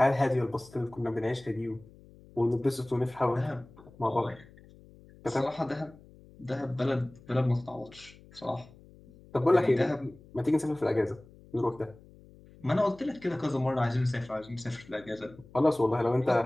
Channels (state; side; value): noise; left; hum, 23 dB below the sound